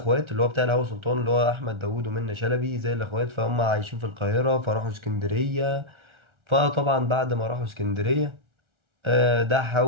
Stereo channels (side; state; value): left; late; 1.4 ms